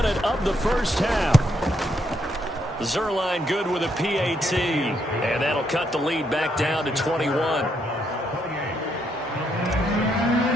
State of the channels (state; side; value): normal; both; correlation 0.76